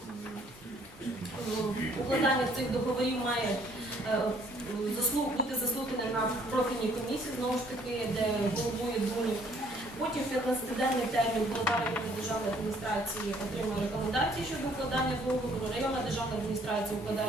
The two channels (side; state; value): both; normal; correlation 0.62